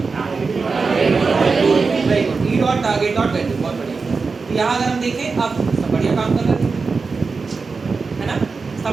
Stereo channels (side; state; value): left; quieter; 4.6 dB